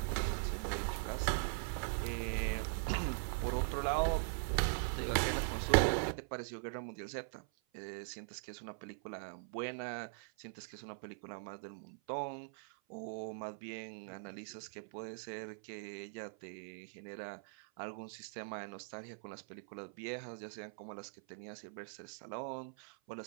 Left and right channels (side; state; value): left; silent; 50 dB below the other